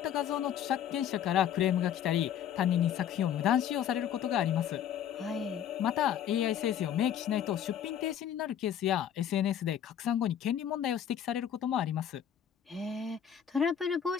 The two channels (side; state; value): right; quieter; 9.4 dB